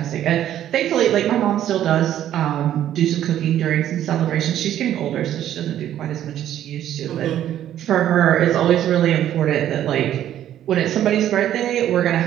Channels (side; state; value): left; quieter; 11.5 dB